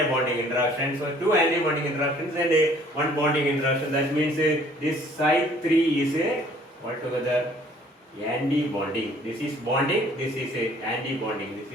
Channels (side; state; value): both; normal; correlation 0.57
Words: a bonding interaction. So two anti-bonding interactions and one bonding interaction. That means this psi3 is altogether anti-bonding. This is bonding. This is anti-bonding. This